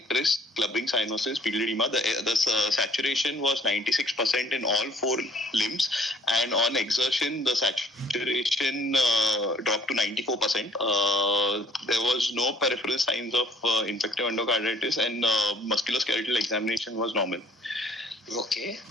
clubbing cyanosis, pupil edema. The saturation was 96% in all 4 limbs, and on exertion, the saturation dropped to 94%. There was no peripheral signs of infective endocarditis, and musculoskeletal examination was normal. Okay.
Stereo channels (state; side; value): normal; both; correlation 0.58